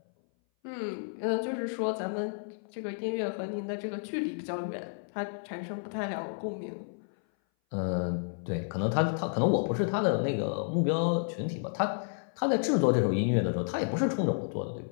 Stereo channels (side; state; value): right; silent; 57 dB below the other